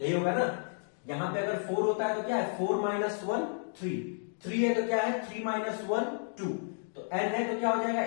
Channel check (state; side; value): silent; right; digital silence